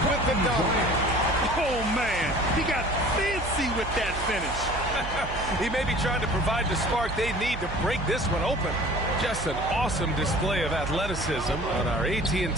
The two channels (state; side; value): noise; right; hum, 9 dB below the sound